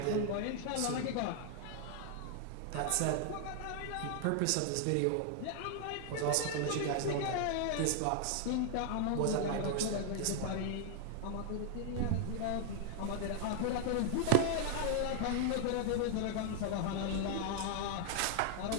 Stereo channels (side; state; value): both; different; correlation 0.00